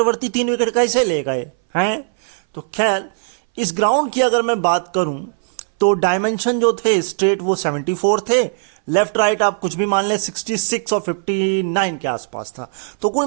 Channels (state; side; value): silent; left; 63 dB below the other